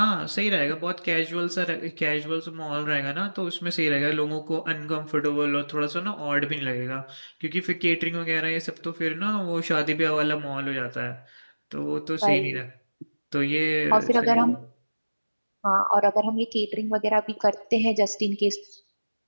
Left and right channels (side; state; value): both; inverted; correlation -1.00